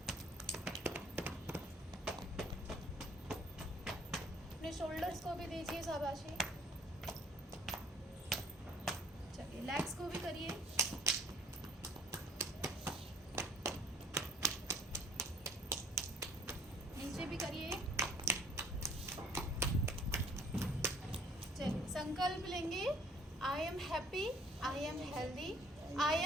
अपने शोल्डर्स को भी दीजिए शाबाशी। चलिए लेग्स को भी करिए। नीचे भी करिए। चलिए संकल्प लेंगे, I am happy, I am healthy, I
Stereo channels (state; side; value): normal; both; correlation 0.57